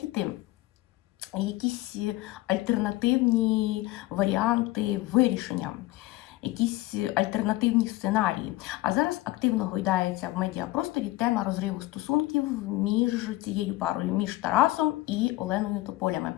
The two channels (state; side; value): quieter; right; 18.2 dB